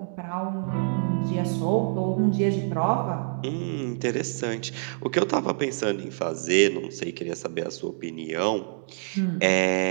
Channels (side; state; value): left; silent; 61 dB below the other